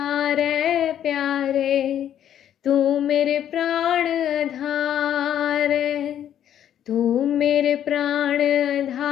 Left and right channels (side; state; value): right; quieter; 10.3 dB